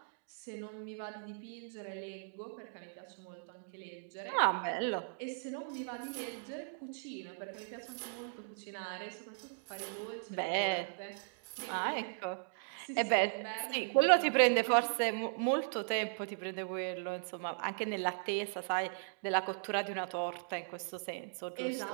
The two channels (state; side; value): silent; left; digital silence